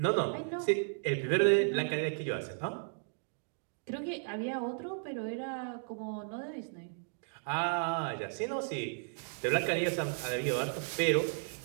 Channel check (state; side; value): silent; left; digital silence